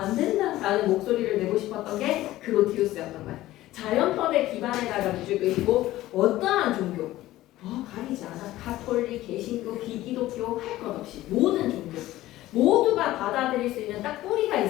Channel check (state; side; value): quieter; right; 15.8 dB